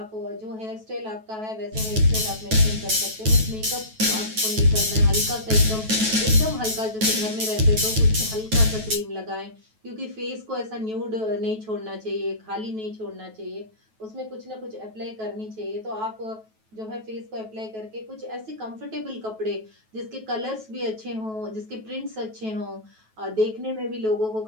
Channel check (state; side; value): late; left; 9.2 ms